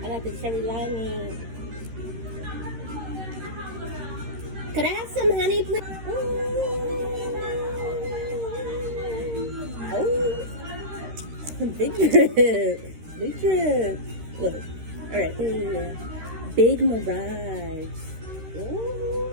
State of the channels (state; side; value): late; left; 13 ms